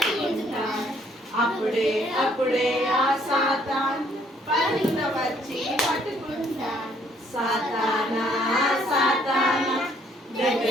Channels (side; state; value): both; normal; correlation 0.65